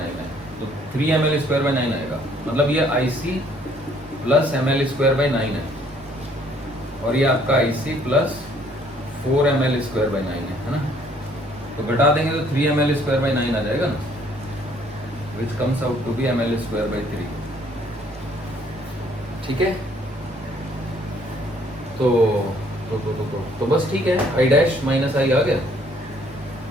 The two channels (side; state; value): both; normal; correlation 0.62